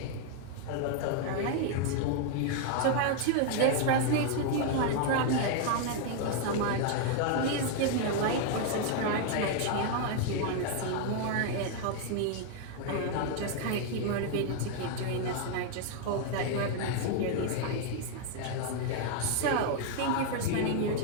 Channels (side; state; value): both; different; correlation 0.00